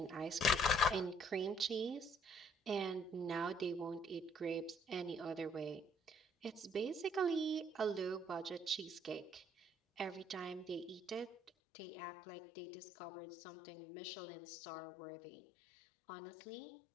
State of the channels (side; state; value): right; drops out; at 11.5 s